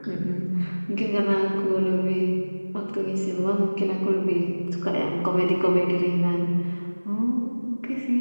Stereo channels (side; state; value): both; inverted; correlation -1.00